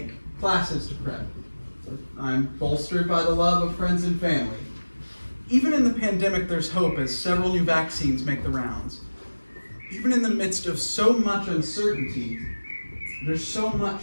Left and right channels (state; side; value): inverted; both; correlation -1.00